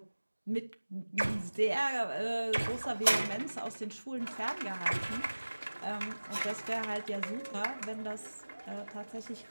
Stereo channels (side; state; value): both; inverted; correlation -1.00